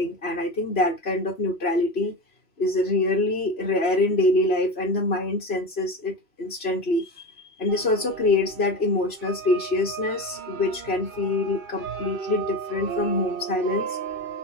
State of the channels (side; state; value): right; late; 3.0 ms